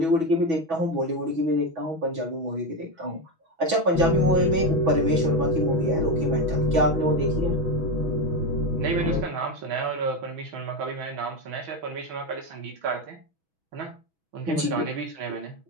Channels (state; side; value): late; left; 6.2 ms